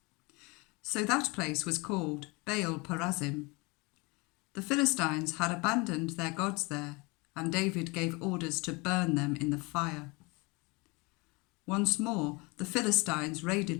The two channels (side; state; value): right; quieter; 27.0 dB